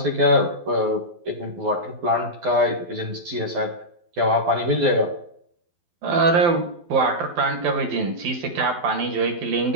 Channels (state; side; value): late; left; 12 ms